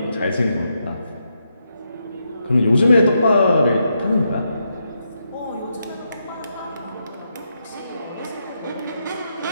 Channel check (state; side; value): inverted; both; correlation -0.82